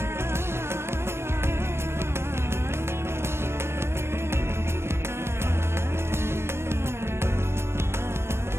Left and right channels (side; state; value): left; late; 0.12 ms